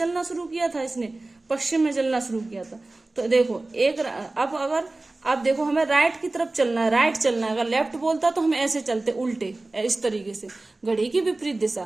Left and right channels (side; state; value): left; quieter; 3.0 dB